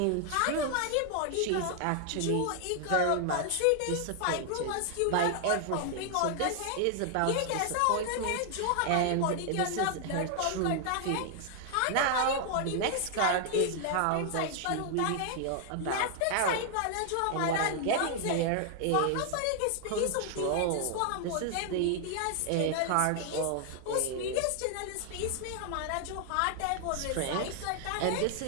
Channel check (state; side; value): different; both; correlation 0.00